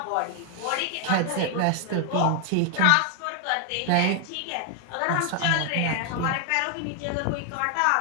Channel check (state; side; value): different; both; correlation 0.00